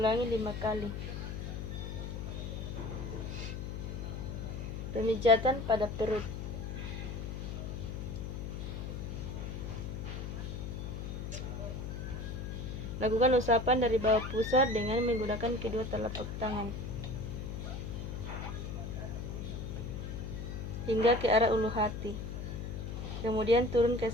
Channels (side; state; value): left; noise; hum, 5 dB below the sound